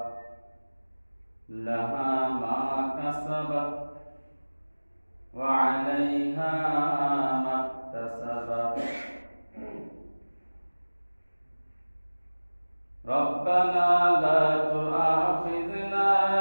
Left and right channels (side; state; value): both; inverted; correlation -1.00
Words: لها ما كسبت وعليها ما اكتسبت. ربنا لا تؤاخذنا